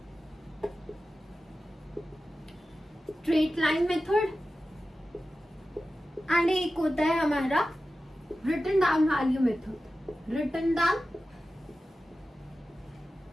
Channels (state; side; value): normal; both; correlation 0.94